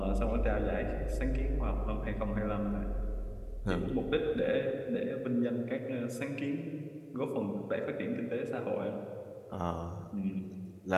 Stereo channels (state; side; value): identical; both; correlation 1.00